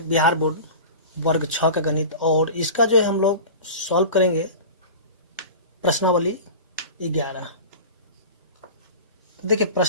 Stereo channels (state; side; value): inverted; both; correlation -0.33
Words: बिहार बोर्ड वर्ग 6 का गणित, और इसका जो है हम लोग सॉल्व करेंगे प्रश्नावली 11। तो देखिए,